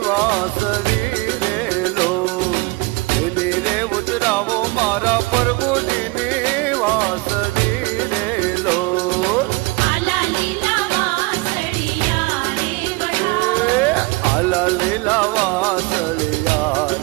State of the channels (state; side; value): quieter; left; 24.7 dB